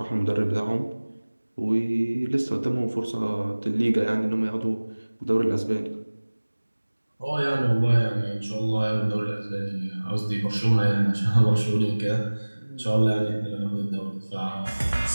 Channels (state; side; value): inverted; both; correlation -1.00